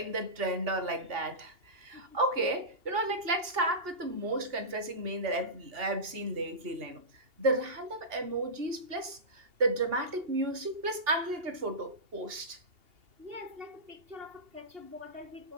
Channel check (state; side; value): late; left; 2.8 ms